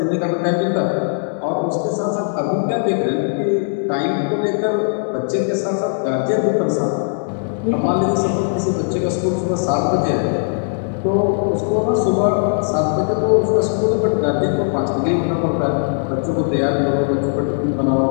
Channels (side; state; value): right; silent; digital silence